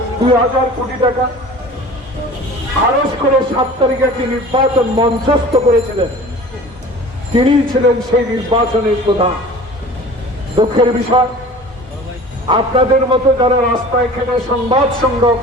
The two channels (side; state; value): both; normal; correlation 0.42